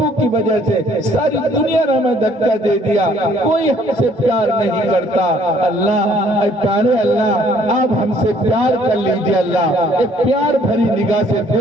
کی وجہ سے ساری دنیا نے ہمیں دھکا دے دیا کوئی ہم سے پیار نہیں کرتا اللہ اے پیارے اللہ آپ ہم سے پیار کر لیجئے اللہ ایک پیار بھری نگاہ سے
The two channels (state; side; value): normal; both; correlation 0.61